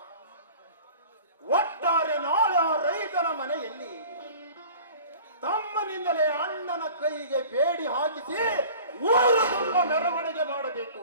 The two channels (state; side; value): inverted; both; correlation -0.44